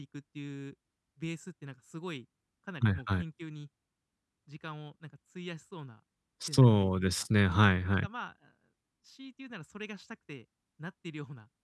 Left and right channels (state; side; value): identical; both; correlation 1.00